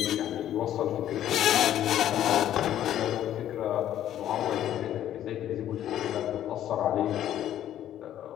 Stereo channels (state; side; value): quieter; right; 11.6 dB